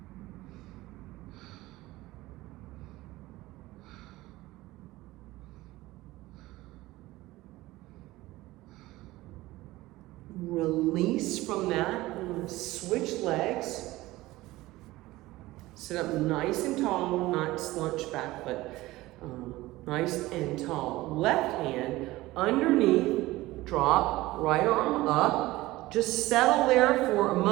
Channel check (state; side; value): quieter; left; 18.4 dB